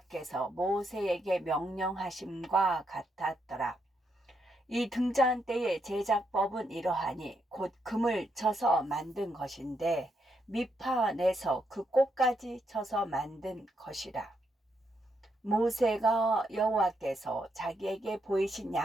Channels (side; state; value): both; normal; correlation 0.79